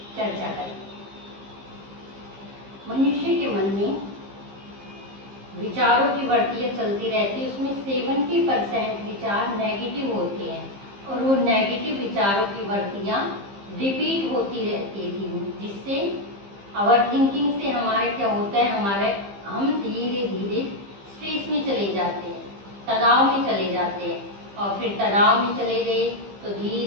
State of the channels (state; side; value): late; left; 15 ms